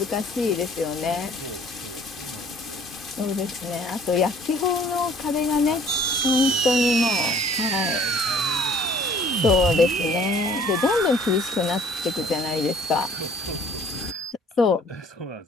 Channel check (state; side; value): normal; both; correlation 0.55